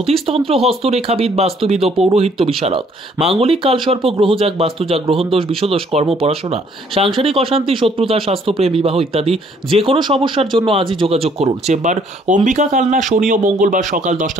হস্তরেখাবিদ, বাস্তুবিদ ও পৌরোহিত্য বিশারদ। মাঙ্গলিক কালসর্প, গ্রহজাগ, বাস্তুজাগ, গ্রহণদোষ, বিষদোষ, কর্ম, পড়াশোনা, সাংসারিক অশান্তি, শত্রুতা, স্বাস্থ্যপ্রেম, বিবাহ ইত্যাদি যে কোনো সমস্যার জন্য আজই যোগাযোগ করুন। চেম্বার অম্বিকা, কালনা, শনি ও মঙ্গলবার সকাল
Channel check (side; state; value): both; normal; correlation 0.63